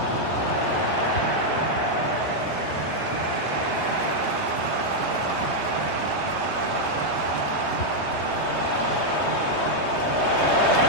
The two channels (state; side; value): late; right; 3.2 ms